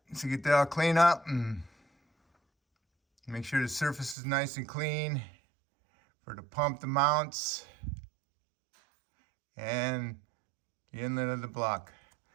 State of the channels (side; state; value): left; drops out; at 4.2 s